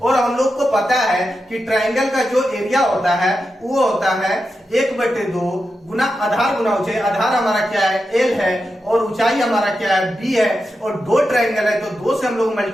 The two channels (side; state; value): both; normal; correlation 0.89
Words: हम लोग को पता है कि ट्राइंगल का जो एरिया होता है वो होता है 1/2 गुना आधार गुना ऊंचाई। आधार हमारा क्या है? एल है, और ऊंचाई हमारा क्या है? बी है। और दो ट्राइंगल है तो 2 से हम लोग